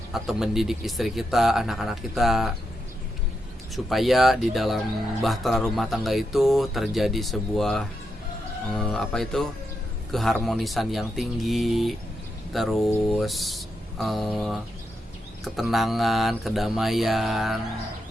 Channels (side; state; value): both; normal; correlation 0.85